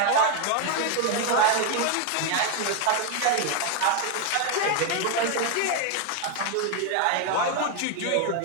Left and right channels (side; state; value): both; different; correlation 0.01